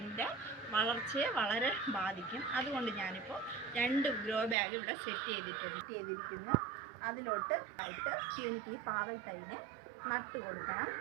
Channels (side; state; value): left; drops out; at 4.5 s